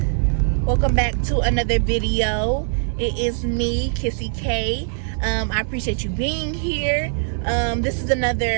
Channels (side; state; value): left; silent; digital silence